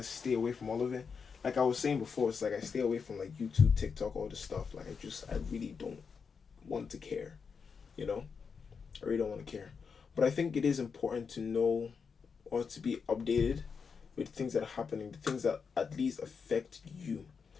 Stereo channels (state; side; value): quieter; right; 5.8 dB